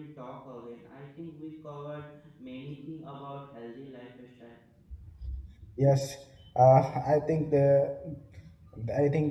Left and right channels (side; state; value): both; identical; correlation 1.00